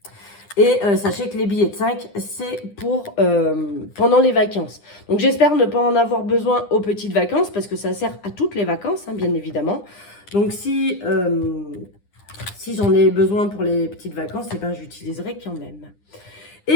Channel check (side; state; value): right; late; 9.9 ms